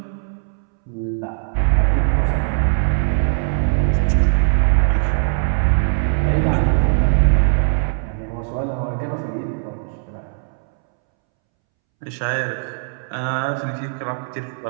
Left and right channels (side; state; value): left; silent; 66 dB below the other